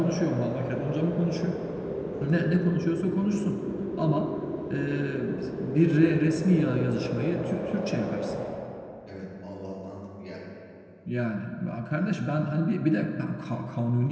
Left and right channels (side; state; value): both; identical; correlation 1.00